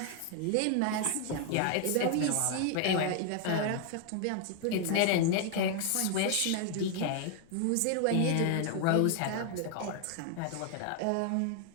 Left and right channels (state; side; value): different; both; correlation 0.00